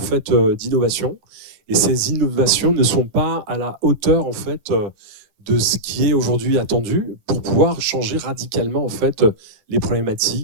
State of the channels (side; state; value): left; late; 10 ms